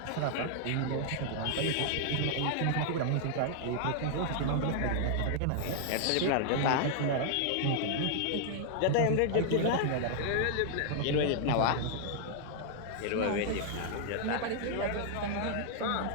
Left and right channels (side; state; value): both; different; correlation -0.01